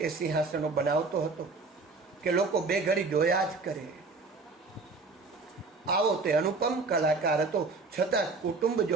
એ સિંહાસનો બનાવતો હતો કે લોકો બે ઘડી જોયા જ કરે. આવો તે અનુપમ કલાકાર હતો, છતાં કુટુંબ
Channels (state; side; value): quieter; left; 3.9 dB